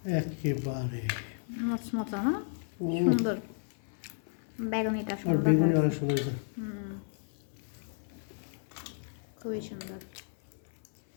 একেবারে মচমচা না, সুন্দর। বেগুনিটা আর সুন্দর, বেগুনি অনেক সুন্দর হয়েছে। খুবই সুন্দর।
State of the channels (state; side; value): silent; right; 56 dB below the other